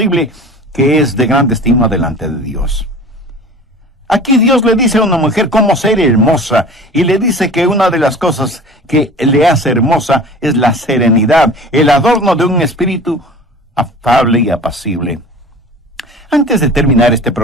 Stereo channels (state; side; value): normal; both; correlation 0.40